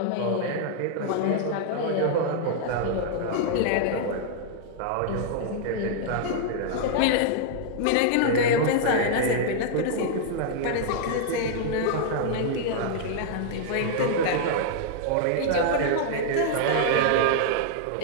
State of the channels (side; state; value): both; different; correlation -0.01